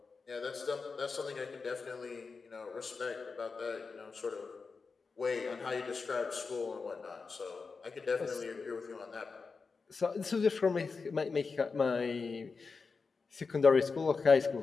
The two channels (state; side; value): quieter; right; 4.7 dB